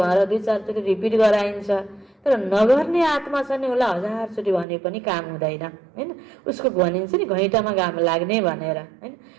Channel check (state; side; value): drops out; left; at 4.7 s